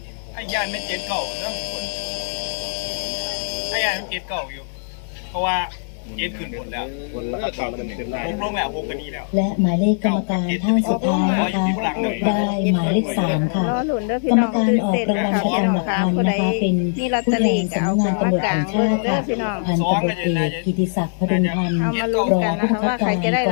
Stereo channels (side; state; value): right; silent; digital silence